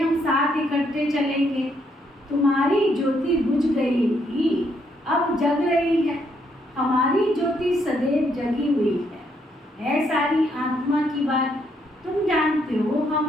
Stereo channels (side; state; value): both; normal; correlation 0.74